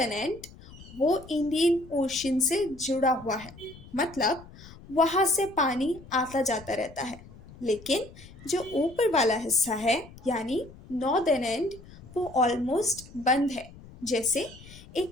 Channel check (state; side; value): noise; left; rumble, 19 dB below the sound